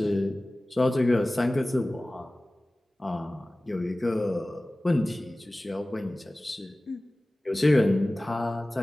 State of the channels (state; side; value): normal; both; correlation 0.98